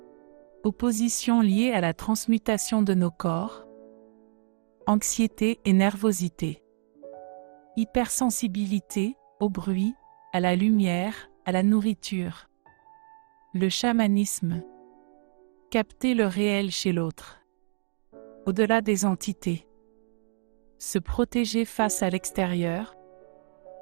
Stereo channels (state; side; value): silent; left; digital silence